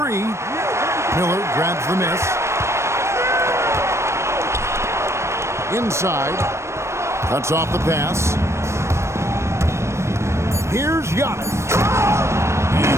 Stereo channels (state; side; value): late; left; 0.13 ms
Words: Miller grabs the miss. Inside. Cuts off the pass. Here's Giannis. And